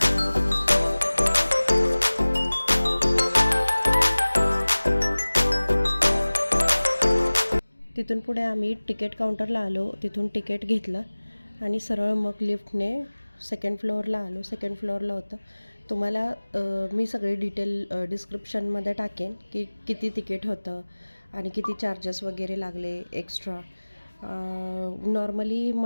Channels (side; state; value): both; inverted; correlation -1.00